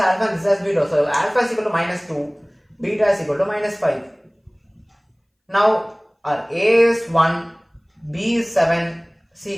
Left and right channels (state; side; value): identical; both; correlation 1.00